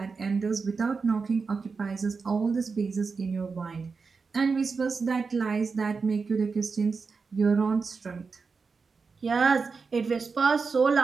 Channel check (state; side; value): quieter; left; 4.8 dB